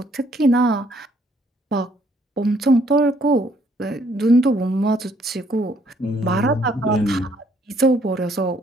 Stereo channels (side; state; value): both; normal; correlation 0.66